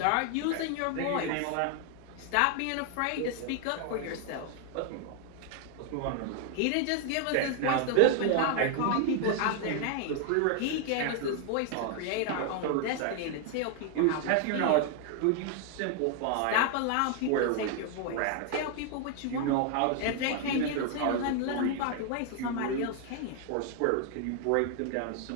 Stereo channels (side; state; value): both; different; correlation 0.00